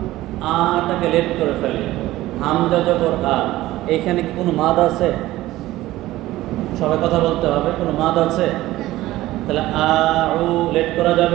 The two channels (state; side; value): quieter; left; 16.5 dB